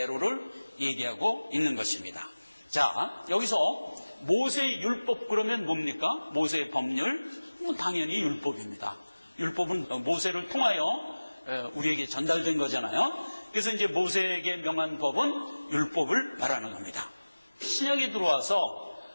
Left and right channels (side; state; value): both; inverted; correlation -1.00